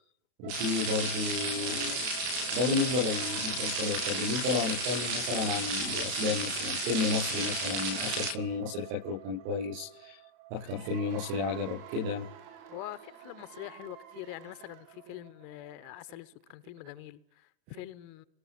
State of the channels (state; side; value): late; left; 32 ms